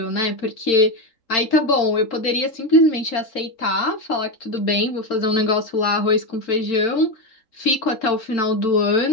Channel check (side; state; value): right; late; 4.4 ms